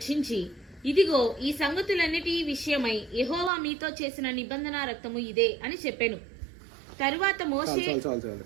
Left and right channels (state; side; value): drops out; left; at 3.5 s